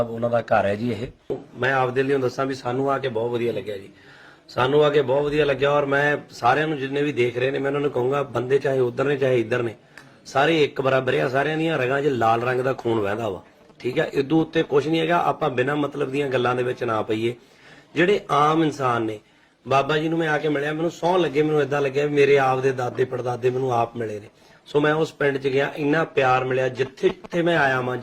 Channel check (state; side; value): identical; both; correlation 1.00